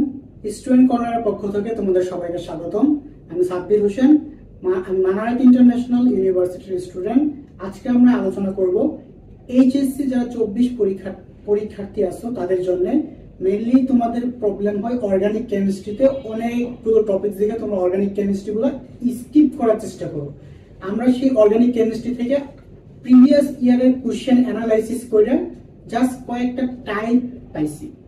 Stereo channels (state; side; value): identical; both; correlation 1.00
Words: স্টুডেন্ট কর্নারের পক্ষ থেকে তোমাদের সবাইকে স্বাগতম। আমি সাব্বির হোসেন, মানারাত ইন্টারন্যাশনাল ইউনিভার্সিটির স্টুডেন্ট। আজকে আমরা আলোচনা করব এইচএসসি যারা 24 পরীক্ষার্থী আছো তাদের জন্য। মেইনলি তোমাদের প্রবলেম হয় অর্গানিক কেমিস্ট্রিতে, অনেকগুলো টপিক থেকে তোমরা অর্গানিক কেমিস্ট্রিগুলো স্কিপ করার চেষ্টা করো। আমরা সেই অর্গানিক কেমিস্ট্রি থেকে প্রিভিয়াস ইয়ারের কোশ্চেন অ্যানালাইসিস করে জাস্ট কয়েকটা টাইপ পাইছি।